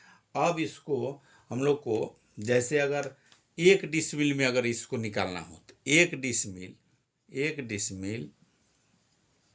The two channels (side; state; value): both; identical; correlation 1.00